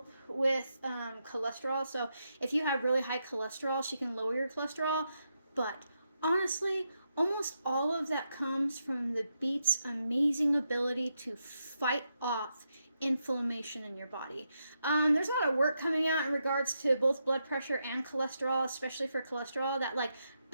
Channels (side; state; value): both; inverted; correlation -0.83